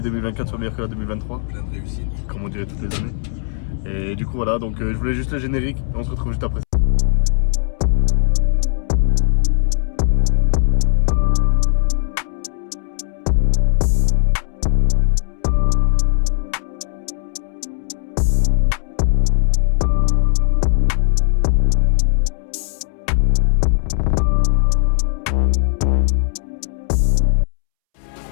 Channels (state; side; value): silent; right; 67 dB below the other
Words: 2024 soit meilleure que la 2023. Plein de réussite. Comme on dirait toutes les années. Et du coup voilà, donc je voulais juste le générique et on se retrouve juste après.